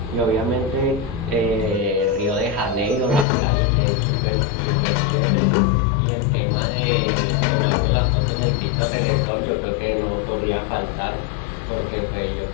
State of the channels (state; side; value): drops out; right; at 3.2 s